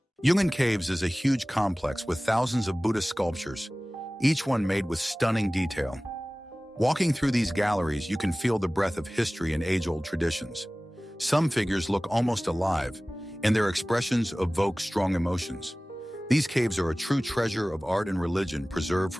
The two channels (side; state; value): both; normal; correlation 0.98